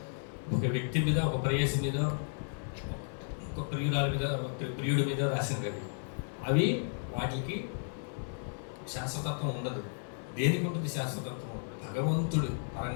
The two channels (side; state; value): right; silent; 55 dB below the other